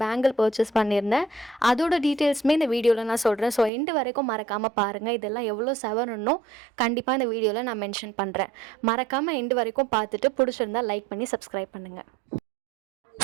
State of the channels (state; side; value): drops out; left; at 3.7 s